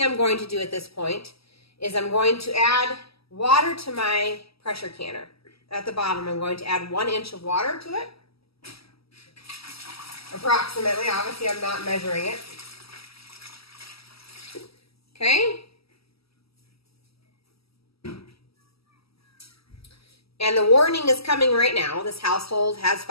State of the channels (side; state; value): right; late; 0.76 ms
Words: I'm going to do at this point is I'm going to add water to my pressure canner. At the bottom, I'm going to add 1 inch of water to it. Approximately, obviously I'm not measuring it. Okay. And the warning is coming right now. This household has